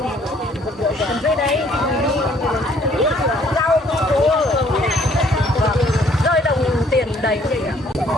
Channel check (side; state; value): both; normal; correlation 0.62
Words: đây đây rau cua rơi đồng tiền đầy vậy ạ